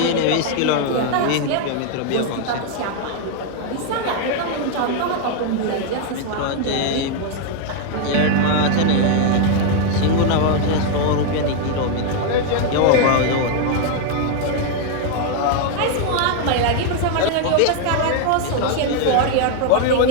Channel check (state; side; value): different; both; correlation 0.00